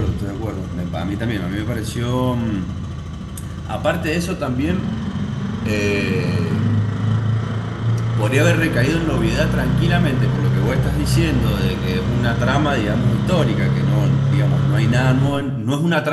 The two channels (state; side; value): identical; both; correlation 1.00